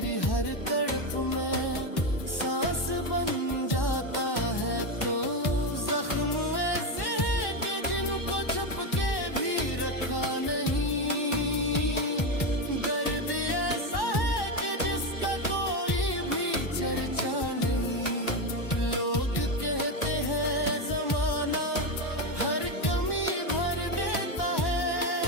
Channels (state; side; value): late; right; 1.1 ms